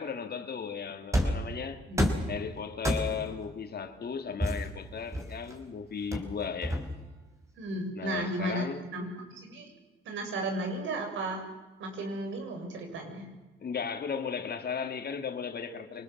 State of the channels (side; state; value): both; normal; correlation 0.52